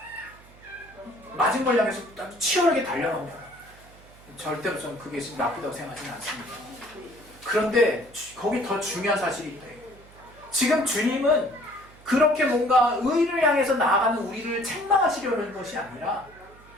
맞은 걸 향해서 치열하게 달려갑니다. 절대로 저는 그게 지금 나쁘다고 생각하지는 않습니다. 그런데 거기 더 중요한 사실이 있다. 지금 주님은 그렇게 뭔가 의를 향해서 나아가는 우리를 책망하시려는 것이 아니라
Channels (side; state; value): right; noise; hum, 24 dB below the sound